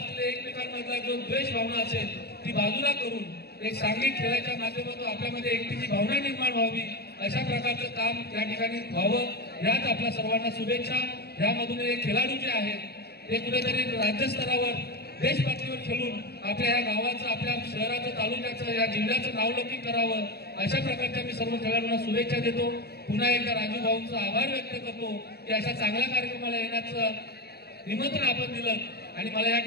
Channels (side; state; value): right; late; 0.47 ms